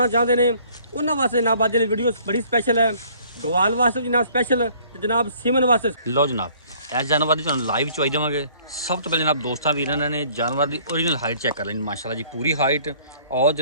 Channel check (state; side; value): inverted; both; correlation -0.57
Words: ਚਾਹੁੰਦੇ ਨੇ ਉਹਨਾਂ ਵਾਸਤੇ ਜਨਾਬ ਅੱਜ ਦੀ ਵੀਡੀਓ ਬੜੀ ਸਪੈਸ਼ਲ ਹੈ। ਗਵਾਲ ਵਾਸਤੇ ਜਨਾਬ ਸਪੈਸ਼ਲ ਤੇ ਜਨਾਬ ਸੀਮਨ ਵਾਸਤੇ ਲੋ ਜਨਾਬ ਇਸ ਜਾਨਵਰ ਦੀ ਤੁਹਾਨੂੰ ਲਾਈਵ ਚਵਾਈ ਦੇਵਾਂਗੇ। ਸਭ ਤੋਂ ਪਹਿਲੇ ਜਨਾਬ ਦੋਸਤਾਂ ਵੀਰਾਂ ਨੇ ਜਾਨਵਰ ਦੀ ओरिजिनल हाइट चेक कर लेनी माशाल्लाह जी, पूरी हाइट और